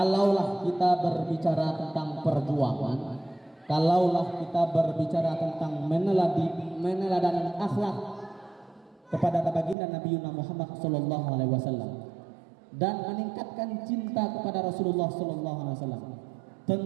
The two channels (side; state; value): left; drops out; at 9.8 s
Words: kita berbicara tentang perjuangan, kalaulah kita berbicara tentang meneladani akhlak kepada baginda Nabi Muhammad sallallahu alaihi wasallam dan meningkatkan cinta kepada Rasulullah sallallahu alaihi wasallam,